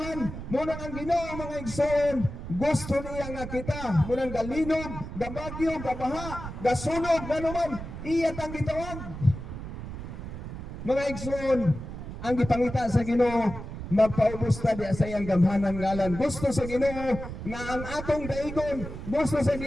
Muna ang Ginoo mga igsoon gusto niya nga kita munang galinog gabagyo gabaha gasunog ganuman iya tang gitawag. Mga igsoon, ang gipangita sa Ginoo magpaubos ta di sa iyang gamhanan ngalan. Gusto sa Ginoo nga ang atong daigon, gusto sa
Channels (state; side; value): noise; right; rumble, 9 dB below the sound